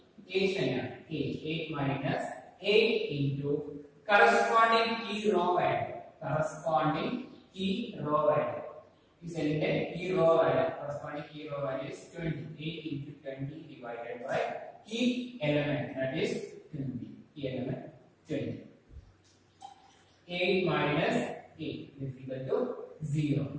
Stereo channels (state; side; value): identical; both; correlation 1.00